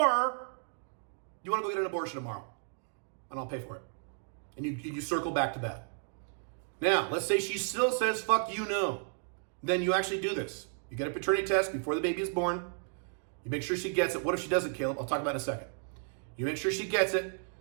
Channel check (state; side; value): silent; left; 56 dB below the other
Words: you want to go get an abortion tomorrow, and I'll pay for it. And you circle back to that. Now, let's say she still says, fuck you, no. Then you actually do this. You get a paternity test before the baby is born. You make sure she gets it. What if she doesn't, Caleb? I'll talk about it in a second. You make sure she gets it.